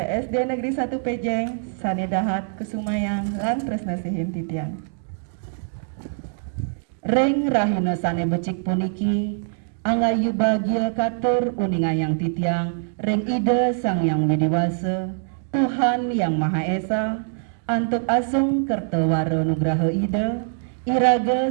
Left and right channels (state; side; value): silent; left; digital silence